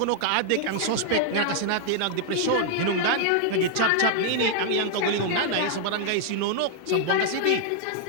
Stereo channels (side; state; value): both; different; correlation -0.01